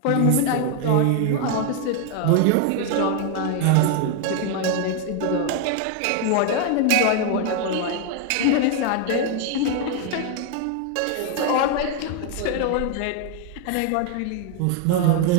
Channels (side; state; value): both; different; correlation 0.00